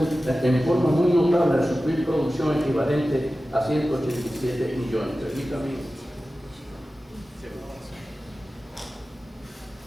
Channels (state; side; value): normal; both; correlation 0.95